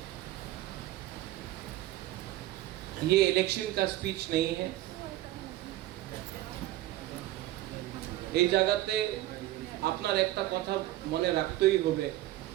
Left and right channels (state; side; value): quieter; left; 15.6 dB